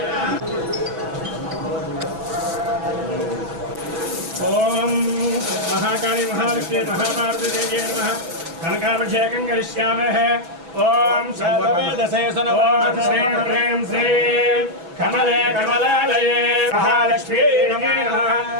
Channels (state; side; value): late; left; 5.9 ms